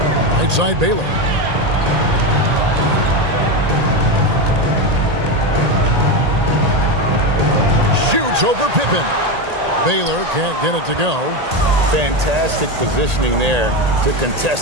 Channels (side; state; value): left; late; 1.8 ms